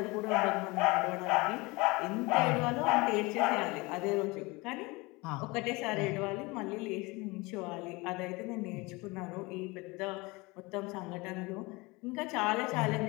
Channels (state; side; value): quieter; right; 24.3 dB